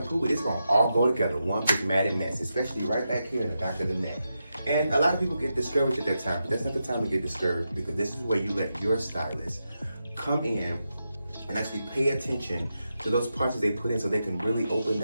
it, it's gonna all go together, one big matted mess, especially right back here in the back of the neck. And a lot of people get discouraged at that time, but that's not the time to get discouraged, because this is where you let your stylist come in and actually pay attention to those parts that they put in, so they can really open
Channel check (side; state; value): both; inverted; correlation -0.87